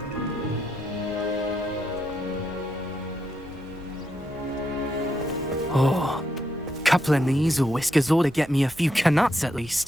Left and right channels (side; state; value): both; normal; correlation 0.80